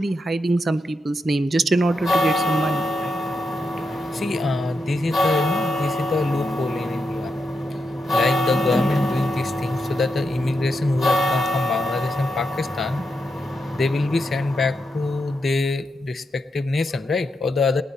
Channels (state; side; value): normal; both; correlation 0.85